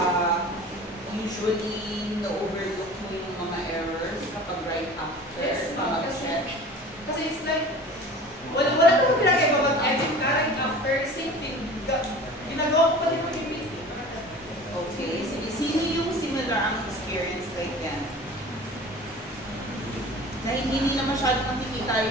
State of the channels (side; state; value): both; normal; correlation 0.40